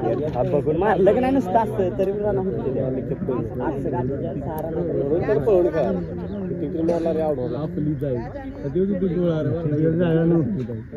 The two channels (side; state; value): both; identical; correlation 1.00